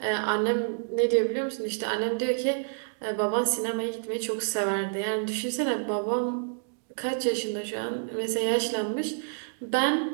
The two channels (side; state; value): left; silent; digital silence